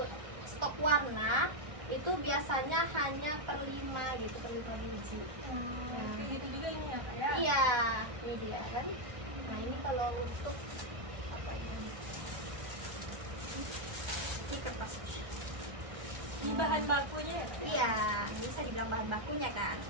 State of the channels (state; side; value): late; left; 1.3 ms